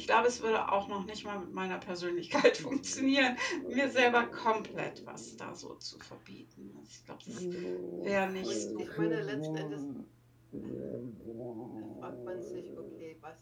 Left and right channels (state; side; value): identical; both; correlation 1.00